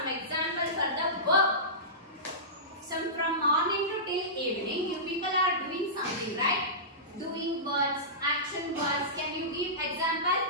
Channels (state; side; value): normal; both; correlation -0.19